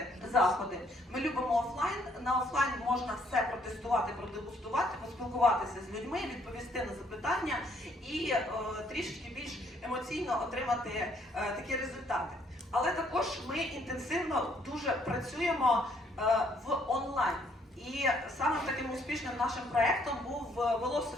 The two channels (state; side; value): normal; both; correlation 0.67